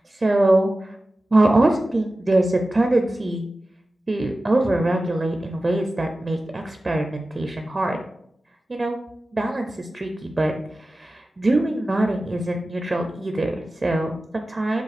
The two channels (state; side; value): normal; both; correlation 0.95